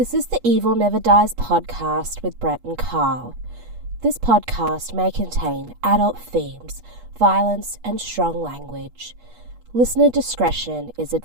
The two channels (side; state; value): left; late; 8.3 ms